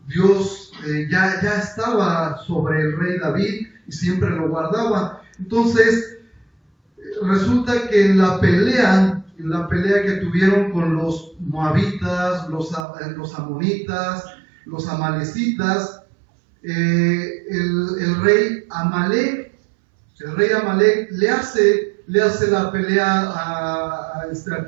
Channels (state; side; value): drops out; left; at 12.9 s